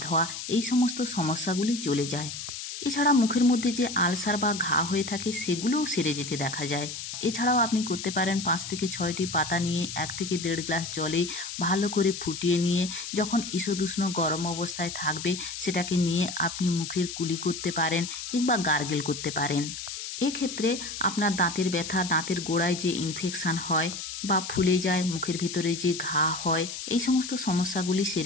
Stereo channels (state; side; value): noise; left; hiss, 7 dB below the sound